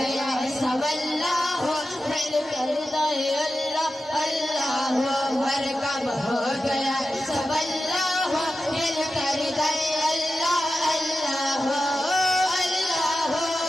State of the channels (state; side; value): normal; both; correlation 0.92